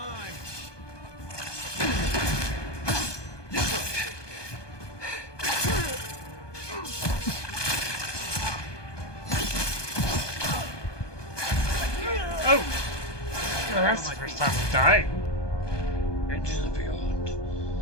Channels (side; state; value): right; late; 1.2 ms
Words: Oh! Well, that's the first time I'm dying. Into the beyond.